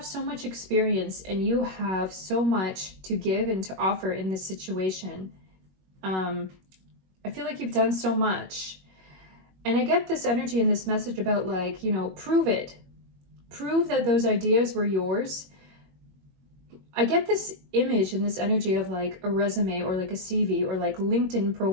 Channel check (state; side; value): late; left; 21 ms